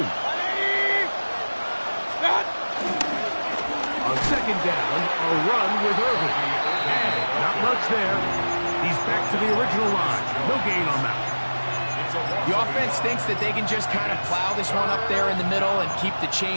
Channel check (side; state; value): both; inverted; correlation -1.00